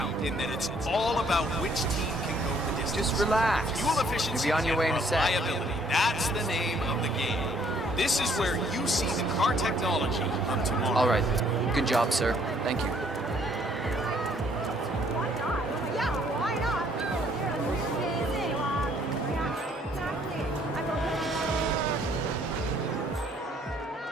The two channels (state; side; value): normal; both; correlation 0.64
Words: In that it's all about which team can go the distance. Just relax. Fuel efficiency You'll be on your way in and a sec. reliability. That's the name of the game. This is where you see the car technology of tomorrow. All right. Good job, sir. Thank you.